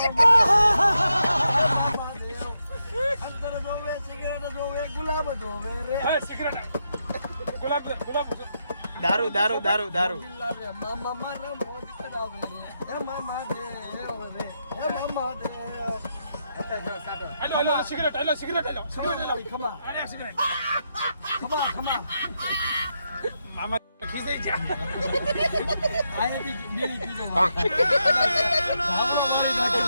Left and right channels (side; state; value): both; inverted; correlation -0.83